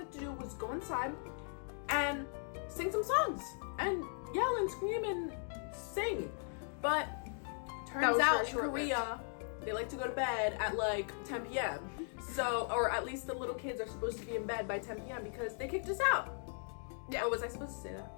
to do was go inside and sing some songs and yell and scream and sing. But turns out in Korea, they like to go to bed at like 10 p.m. So, or at least the little kids are supposed to be in bed by 10 p.m. because they kicked us out. Yeah, was I supposed to say that?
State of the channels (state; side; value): silent; right; 52 dB below the other